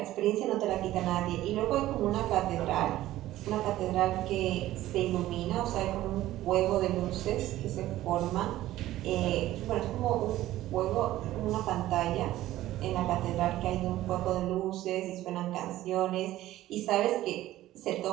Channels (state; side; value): quieter; left; 14.9 dB